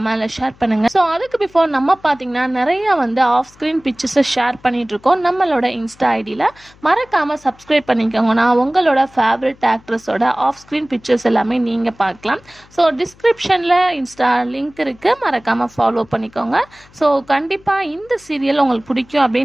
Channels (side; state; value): left; noise; hum, 27 dB below the sound